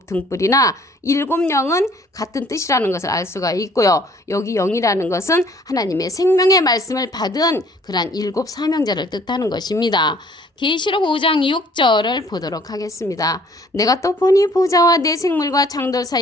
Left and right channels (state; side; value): normal; both; correlation 0.57